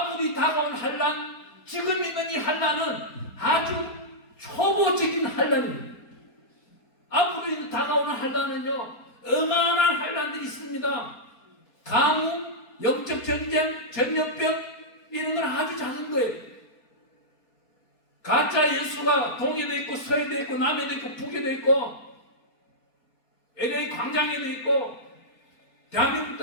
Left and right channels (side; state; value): right; late; 4.3 ms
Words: 다가온 환난, 지금 있는 이 환난은 아주 초보적인 환난입니다. 앞으로 다가오는 환난은요, 어마어마한 환난들이 있습니다. 가뭄, 영적 전쟁, 전염병, 이런 건 아주 작은 거예요. 가짜 예수가 동에도 있고 서에도 있고 남에도 있고 북에도 있고 LA 광장에도 있고 대한민국